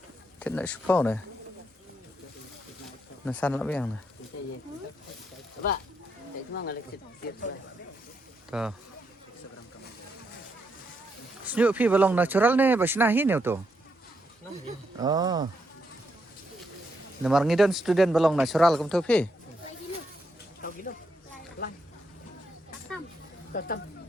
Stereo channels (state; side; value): normal; both; correlation 0.79